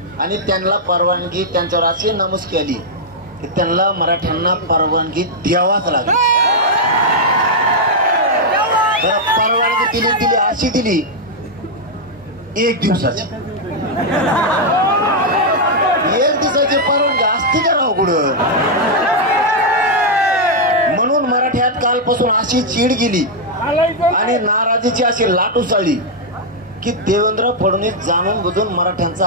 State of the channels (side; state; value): both; normal; correlation -0.04